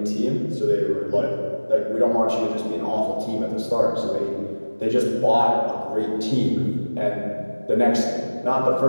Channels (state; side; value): inverted; both; correlation -1.00